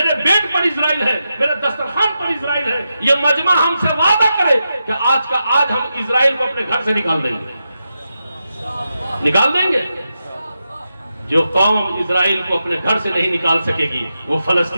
बेड पर इजराइल है, मेरे दस्तरखान पर इजराइल है। ये मजमा हमसे वादा करे कि आज का आज हम इजराइल को अपने घर से निकाल देंगे, निकाल देंगे। जो कौम इजराइल को अपने घर से नहीं निकाल सकेगी वो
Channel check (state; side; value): inverted; both; correlation -0.88